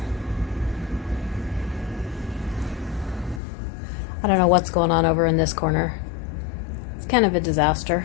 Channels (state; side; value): drops out; right; at 3.4 s